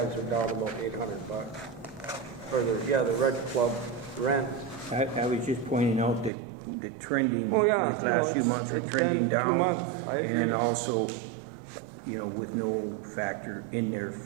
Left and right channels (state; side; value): drops out; left; at 6.3 s